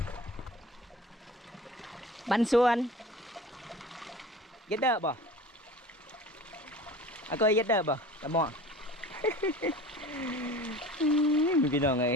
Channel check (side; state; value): both; normal; correlation 0.40